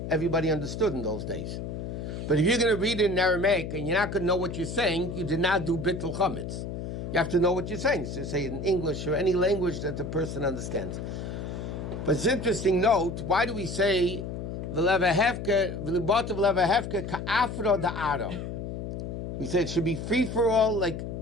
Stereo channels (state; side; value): noise; left; hum, 6 dB below the sound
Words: everybody understood in those days. But if you're going to read it in Aramaic and you're not going to know what you're saying, you did not do bittul chametz. You have to know what you're saying. So say it in English or any language that the person understands. But it's interesting note, why do we say v'levahevke ka'afro da'aro? We say it should be free for all, like